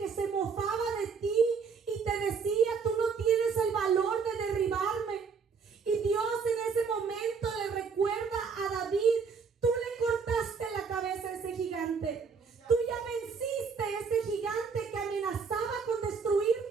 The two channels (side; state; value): left; quieter; 5.6 dB